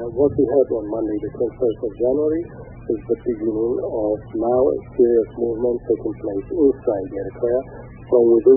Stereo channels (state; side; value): identical; both; correlation 1.00